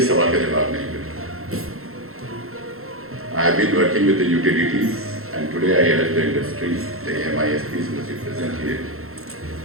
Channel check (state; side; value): late; left; 0.62 ms